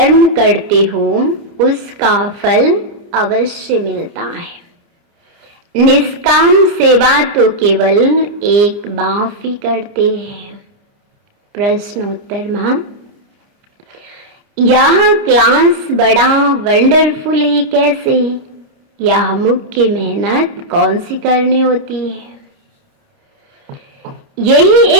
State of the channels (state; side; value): late; left; 29 ms